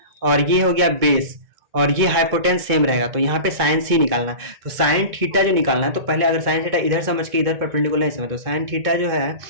और ये हो गया बेस और ये हाइपोटेन्स सेम रहेगा, तो यहाँ पे साइन सी निकालना है। तो साइन थीटा जो निकालना है, तो पहले अगर साइन थीटा इधर समझ के इधर परपेंडिकुलर नहीं समझ, तो साइन थीटा जो है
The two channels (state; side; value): late; left; 2.2 ms